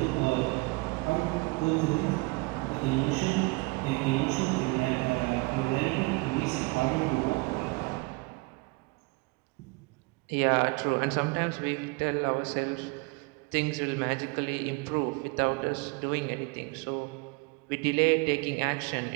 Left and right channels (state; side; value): quieter; left; 26.6 dB